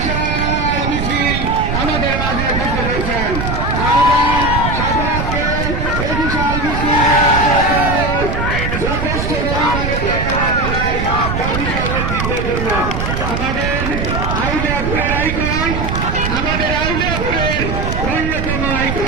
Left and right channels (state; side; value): noise; right; rumble, 2 dB below the sound